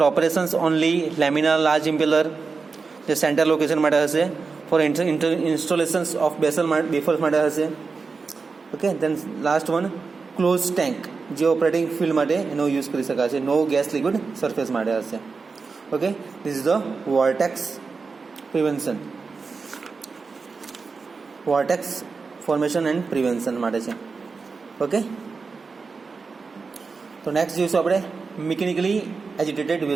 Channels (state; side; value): quieter; left; 4.6 dB